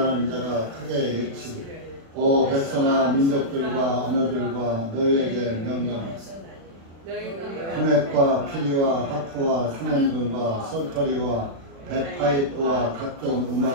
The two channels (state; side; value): late; left; 36 ms